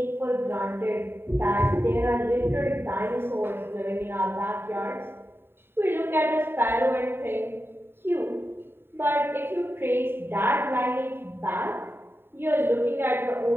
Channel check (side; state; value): left; late; 0.11 ms